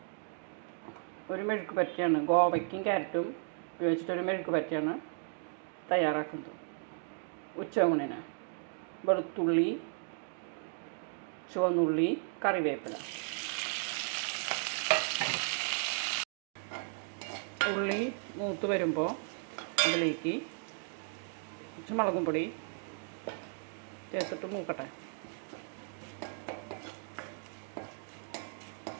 ഒരു മെഴുക്ക് പറ്റിയാണ്, ഗോവയ്ക്കും ക്യാരറ്റും ഉപയോഗിച്ചിട്ടൊരു മെഴുക്ക് പറ്റിയാണ് തയ്യാറാക്കുന്നത്. ഉച്ചയൂണിന് വെളുത്തുള്ളി, ചുവന്നുള്ളി, കറിവേപ്പില. ഉള്ളി മൂത്ത് വരുമ്പോൾ അതിലേക്ക് കുറച്ച് മുളകും പൊടി ചേർത്തിട്ട് മൂക്കട്ടെ.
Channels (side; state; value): left; silent; 54 dB below the other